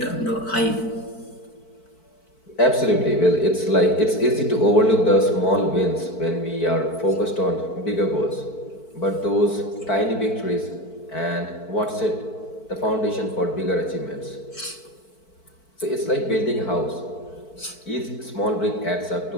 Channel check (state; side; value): late; right; 4.5 ms